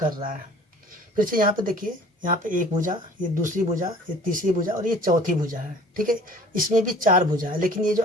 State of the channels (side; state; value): both; normal; correlation 0.49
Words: रहा है। फिर से यहाँ पे देखिए, यहाँ पे एक भुजा, ये दूसरी भुजा, ये तीसरी भुजा और ये चौथी भुजा है। ठीक है, इसमें भी चार भुजा है, लेकिन ये जो